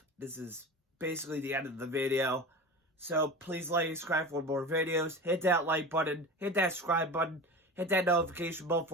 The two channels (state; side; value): normal; both; correlation 0.31